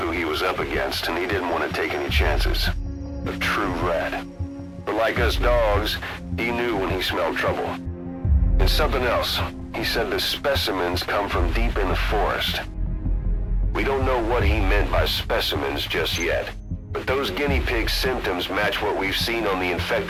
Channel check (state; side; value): identical; both; correlation 1.00